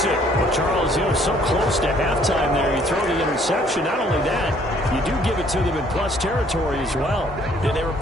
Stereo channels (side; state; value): both; normal; correlation 0.62